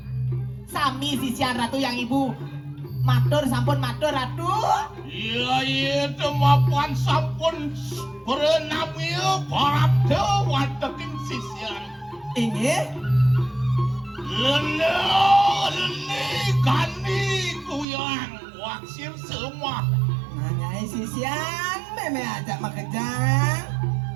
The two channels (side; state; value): left; drops out; at 17.9 s